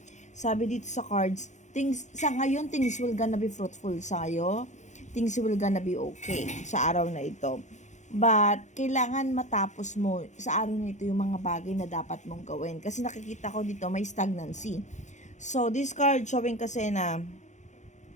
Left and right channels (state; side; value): late; right; 0.35 ms